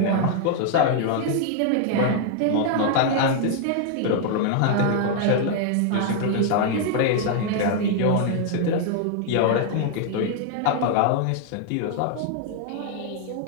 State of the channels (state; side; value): different; both; correlation 0.00